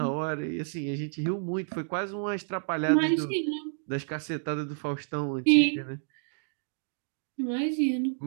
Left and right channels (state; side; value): silent; left; digital silence